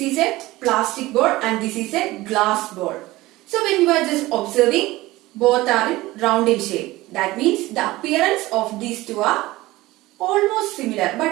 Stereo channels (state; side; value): quieter; left; 18.6 dB